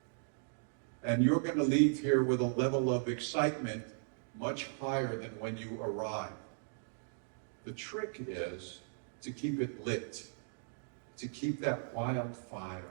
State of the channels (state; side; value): silent; left; digital silence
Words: And you're going to leave here with a level of excitement much higher than when you arrived. The trick is to keep it lit, to keep that